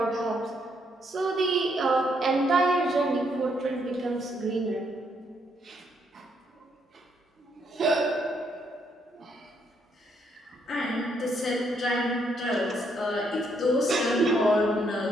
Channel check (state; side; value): normal; both; correlation 0.73